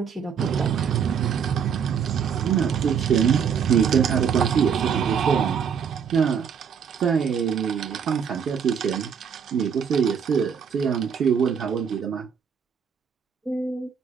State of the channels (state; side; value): quieter; left; 7.1 dB